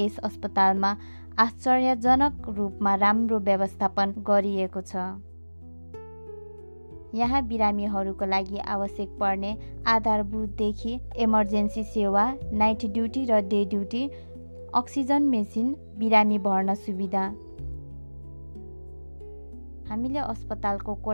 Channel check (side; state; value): both; inverted; correlation -1.00